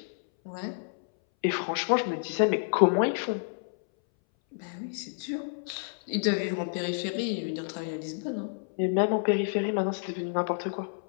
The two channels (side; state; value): right; silent; 58 dB below the other